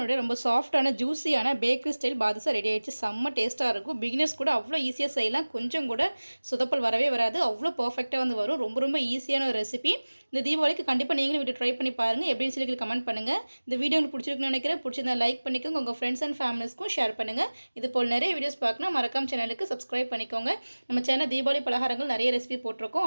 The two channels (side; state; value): both; inverted; correlation -1.00